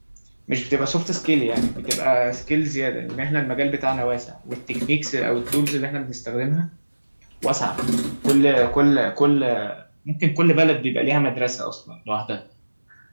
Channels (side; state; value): both; inverted; correlation -1.00